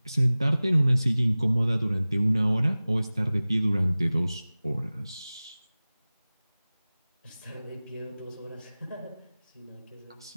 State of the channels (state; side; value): inverted; both; correlation -0.98